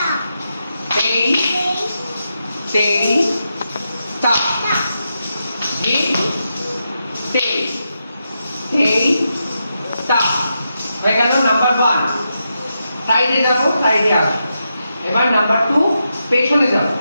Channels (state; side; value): inverted; both; correlation -0.86